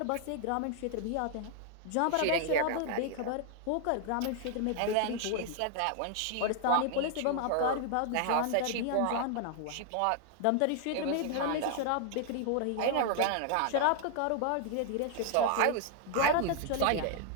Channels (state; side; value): different; both; correlation 0.00